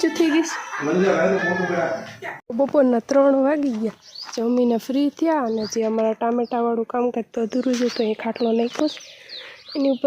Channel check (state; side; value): identical; both; correlation 1.00